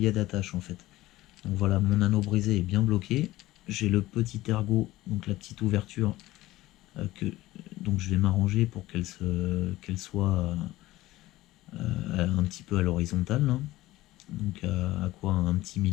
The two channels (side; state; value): right; quieter; 17.1 dB